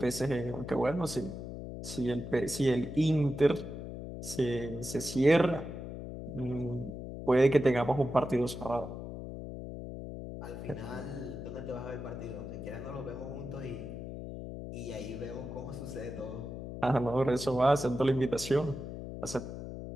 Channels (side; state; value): left; noise; hum, 8 dB below the sound